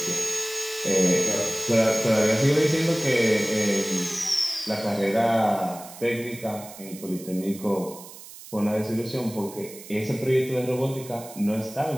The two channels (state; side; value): noise; right; hiss, 16 dB below the sound